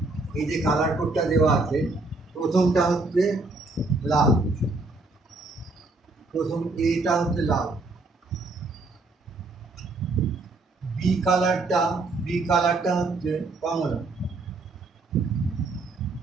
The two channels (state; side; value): quieter; left; 3.3 dB